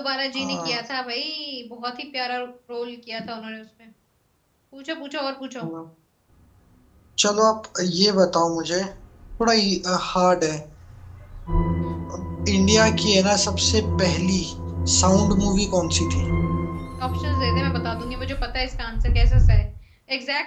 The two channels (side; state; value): both; identical; correlation 1.00